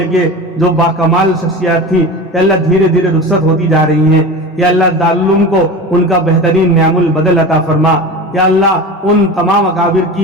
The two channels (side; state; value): both; normal; correlation 0.31